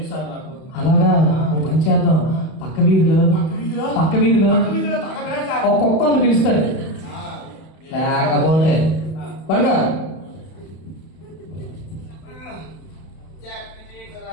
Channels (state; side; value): late; right; 31 ms